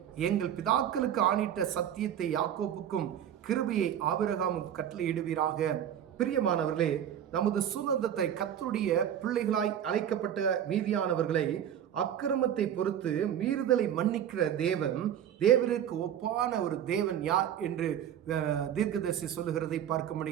எங்கள் பிதாக்களுக்கு ஆணிட்ட சத்தியத்தை யாக்கோப்புக்கும் கிருபையை ஆபிரகாமுக்கும் கட்டளையிடுவீராக. பிரியமானவர்களே, நமது சுதந்திரத்தை கர்த்தருடைய பிள்ளைகளாய் அழைக்கப்பட்ட மீதியானவர்களை அக்கிரமத்தை பொறுத்து மீறுதலை மன்னிக்கிற தேவன், தேவனுக்கு ஒப்பான ஒரு தேவன் யார் என்று தீர்க்கதரிசி சொல்லுகிறதை பார்க்க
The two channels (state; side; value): quieter; left; 9.8 dB